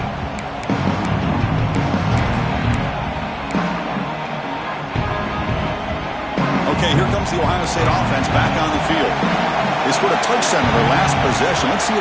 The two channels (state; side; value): identical; both; correlation 1.00